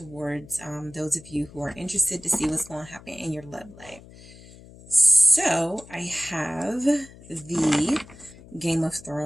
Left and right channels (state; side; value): noise; left; hum, 20 dB below the sound